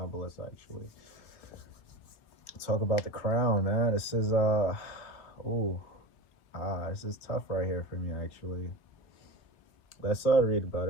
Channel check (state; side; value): late; right; 3.8 ms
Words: but let's actually talk about the crown, man. This is this is tough right here for me actually. Let's read about